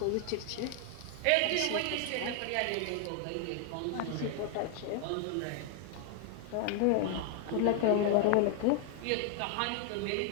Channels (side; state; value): both; different; correlation 0.00